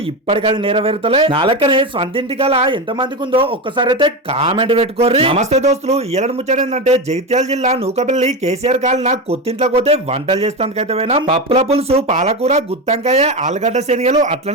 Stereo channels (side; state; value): both; normal; correlation 0.17